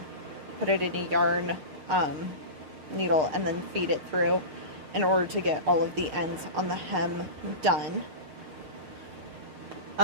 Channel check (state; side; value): late; left; 7.1 ms